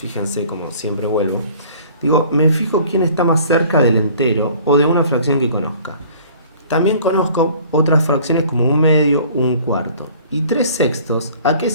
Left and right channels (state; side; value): inverted; both; correlation -0.51